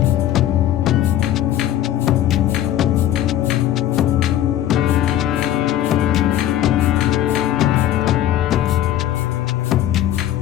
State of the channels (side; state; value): right; quieter; 12.2 dB